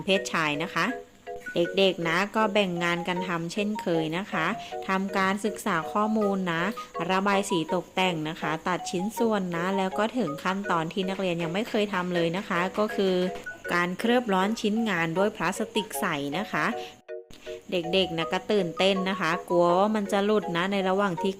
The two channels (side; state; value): both; identical; correlation 1.00